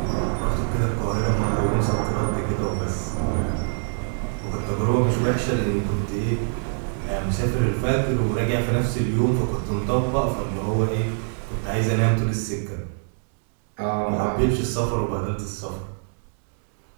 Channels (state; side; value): silent; left; 62 dB below the other